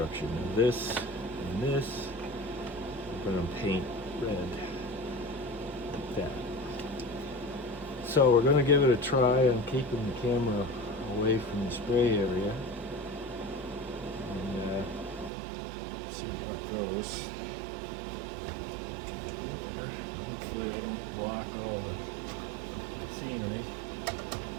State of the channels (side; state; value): left; drops out; at 15.3 s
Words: Now this and this we're going to paint red like that. So we're going to give it a try. I'm keeping the camera away from the spray area and see how it goes. There. Hopefully I don't block all the scenery.